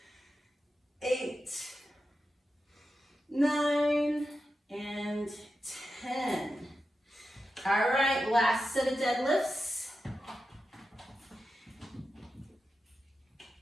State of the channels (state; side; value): normal; both; correlation 0.90